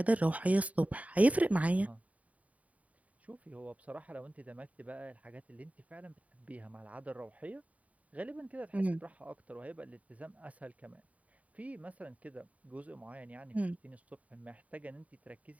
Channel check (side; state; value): left; late; 0.069 ms